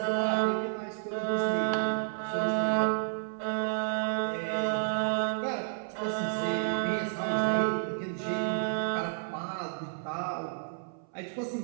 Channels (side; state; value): left; silent; 57 dB below the other